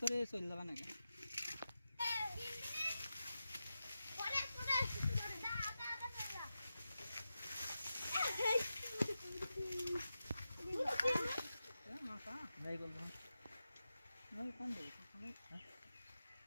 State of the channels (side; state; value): both; inverted; correlation -0.91